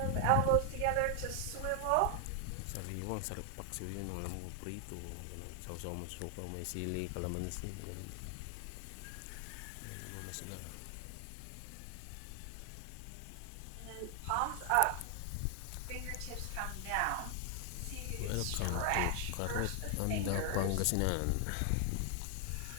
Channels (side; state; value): both; different; correlation 0.00